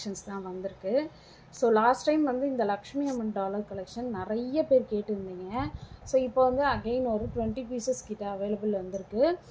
தான் வந்திருக்கு. ஸோ லாஸ்ட் டைம் வந்து இந்த லக்ஷ்மி அம்மன் டாலர் கலெக்ஷன் நிறைய பேர் கேட்டிருந்தீங்க. ஸோ இப்போ வந்து அகெயின் ஒரு 20 பீசஸ் கிட்ட அவைலபிள் வந்திருக்கு.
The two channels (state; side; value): identical; both; correlation 1.00